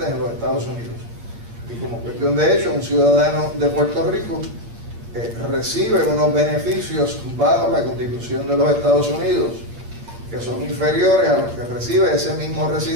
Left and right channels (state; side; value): late; left; 8.7 ms